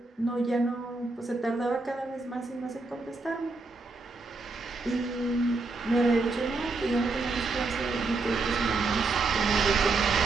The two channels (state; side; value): quieter; left; 3.6 dB